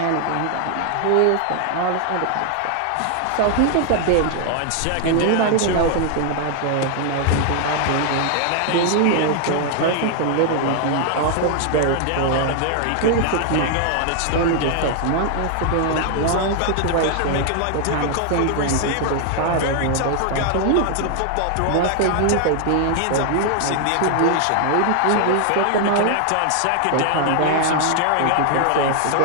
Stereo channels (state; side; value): different; both; correlation 0.00